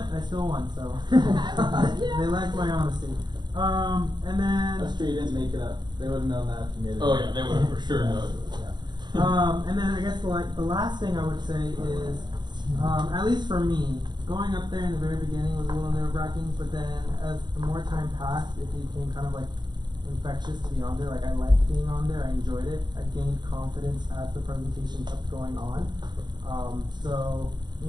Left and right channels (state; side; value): late; left; 0.21 ms